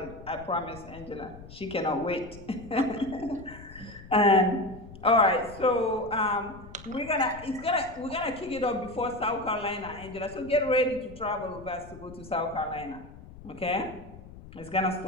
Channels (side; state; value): left; noise; rumble, 17 dB below the sound